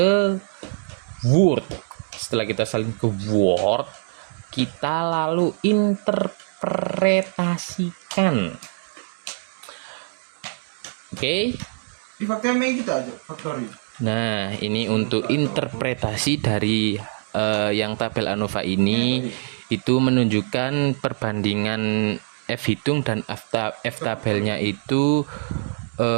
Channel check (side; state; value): left; silent; digital silence